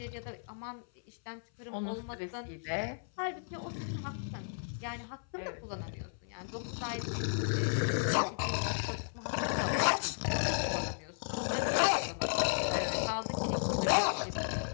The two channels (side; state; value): right; silent; 55 dB below the other